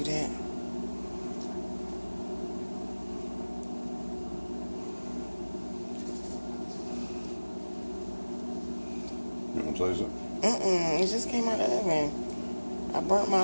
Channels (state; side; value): inverted; both; correlation -1.00